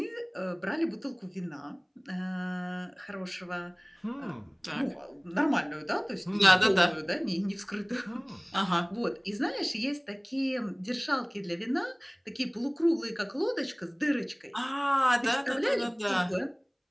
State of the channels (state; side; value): identical; both; correlation 1.00